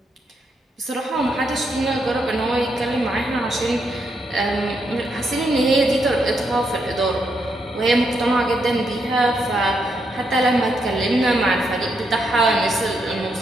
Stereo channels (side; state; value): both; normal; correlation 0.79